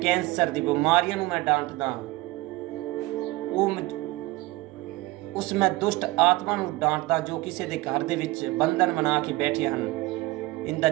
ਦੀ ਬਿਮਾਰੀਆਂ ਨੂੰ ਮੈਂ ਡਾਂਟਦਾ, ਉਸ ਮੈਂ ਦੁਸ਼ਟ ਆਤਮਾ ਨੂੰ ਡਾਂਟਦਾ ਜੋ ਕਿਸੇ ਦੇ ਘਰ ਦੇ ਵਿੱਚ ਬੰਧਨ ਬਣਾ ਕੇ ਬੈਠੇ ਹਨ। ਇਨ the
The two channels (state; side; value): quieter; left; 20.3 dB